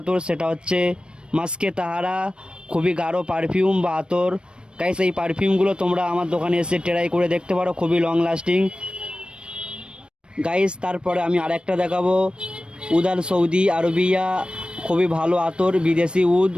সেটা হচ্ছে মাস্কে তাহারা, খুবই গাঢ় পারফিউম বা আতর। গাইস, এই পারফিউমগুলো তোমরা আমার দোকানে এসে ট্রাই করে দেখতে পারো, খুবই লং লাস্টিং। গাইস, তারপরে আমি আরেকটা দেখাবো, উদাল সৌদি আরবিয়া, খুবই ভালো আতর, বিদেশি উদ,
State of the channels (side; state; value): left; late; 0.054 ms